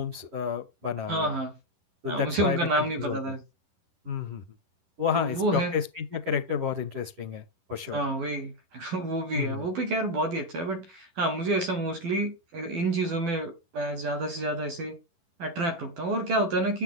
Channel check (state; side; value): late; left; 11 ms